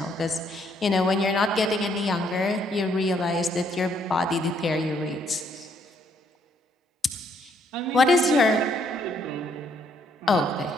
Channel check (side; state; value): both; normal; correlation 0.69